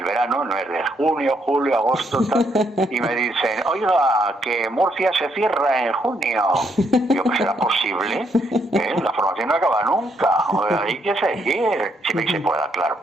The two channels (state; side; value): normal; both; correlation 0.73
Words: verano, no es de junio, julio, agosto, tal, y me dicen, oiga, que Murcia se cierra en junio. Digo, pues será posible, la formación no acaba nunca, hay que seguir, siempre que se pueda, claro.